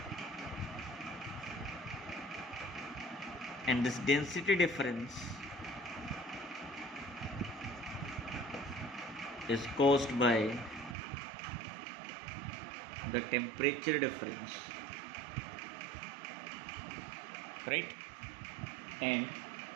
and this density difference is caused by the temperature difference, right? And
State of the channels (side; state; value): left; drops out; at 11.0 s